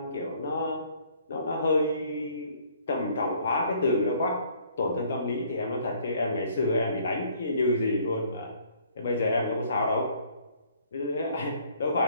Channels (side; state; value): both; inverted; correlation -0.60